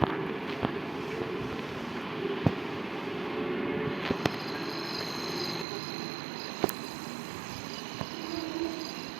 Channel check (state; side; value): drops out; left; at 5.7 s